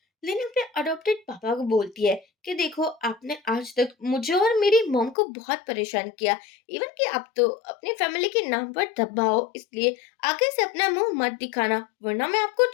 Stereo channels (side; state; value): right; drops out; at 5.2 s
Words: लिन अपने अडॉप्टेड पापा को बोलती है कि देखो आपने आज तक मुझे और मेरी मॉम को बहुत परेशान किया, इवन कि आप तो अपनी फैमिली के नाम पर दबाओ, इसलिए आगे से अपना मुंह मत दिखाना, वरना मैं आपको